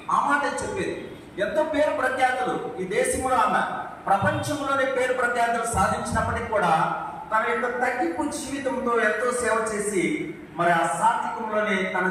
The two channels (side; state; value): both; identical; correlation 1.00